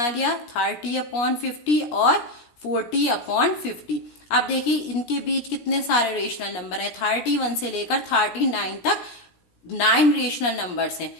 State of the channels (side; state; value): right; late; 17 ms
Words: लिया, 30/50 और 40/50। अब देखिए इनके बीच कितने सारे रेशनल नंबर है, 31 से लेकर 39 तक 9 रेशनल नंबर्स हैं।